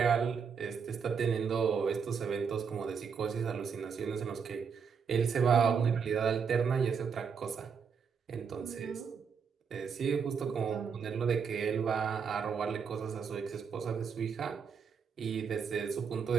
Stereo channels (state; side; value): quieter; left; 6.3 dB